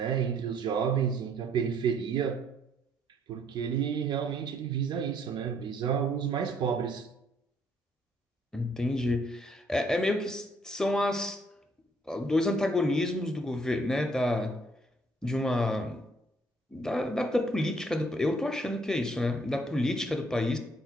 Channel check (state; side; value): normal; both; correlation 0.66